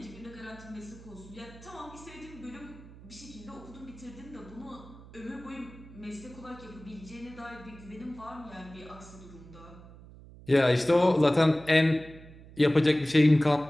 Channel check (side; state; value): right; noise; hum, 19 dB below the sound